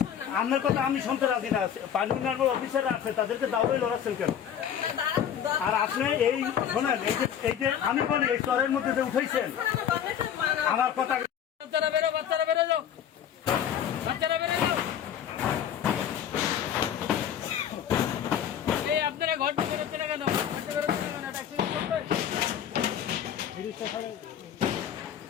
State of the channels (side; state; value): right; quieter; 9.2 dB